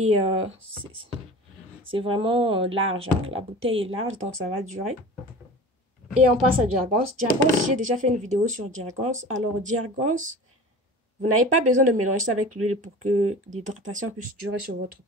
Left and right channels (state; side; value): normal; both; correlation 0.37